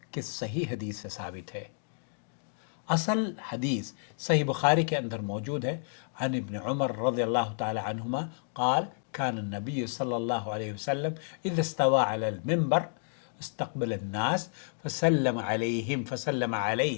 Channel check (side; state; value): right; silent; digital silence